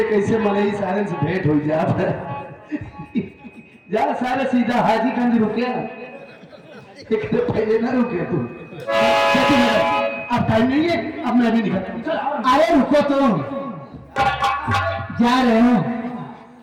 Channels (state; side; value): identical; both; correlation 1.00